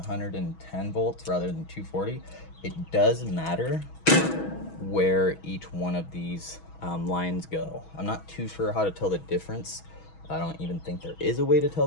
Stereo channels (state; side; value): late; right; 6.2 ms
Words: volts rather than 240, it does matter where each one of these lines go. I'm not too sure how to tell the difference. I don't even think there is a way to tell